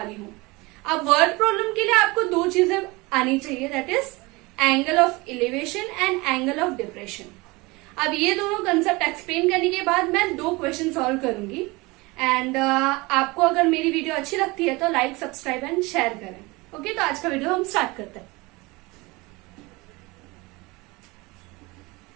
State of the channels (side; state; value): left; quieter; 23.8 dB